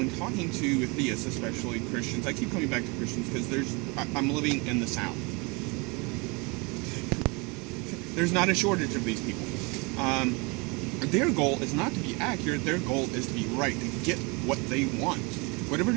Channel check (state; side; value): quieter; left; 29.0 dB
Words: talking to theists, especially Christians, I keep coming back to Christians because I'm living in the South. There's not a shortage of these people. Their goal is not to be accurate, their goal is to be right, to get what they want. Whatever it